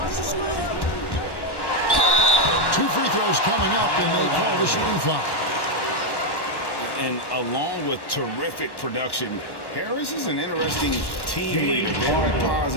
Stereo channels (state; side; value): late; right; 1.1 ms